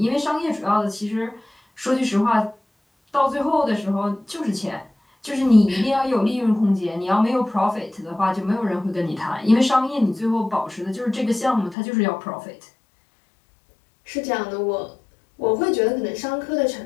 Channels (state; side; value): drops out; right; at 11.8 s